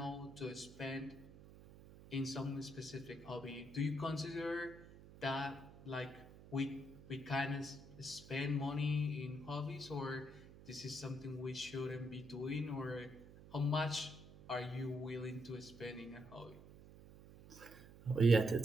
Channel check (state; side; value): noise; right; hum, 18 dB below the sound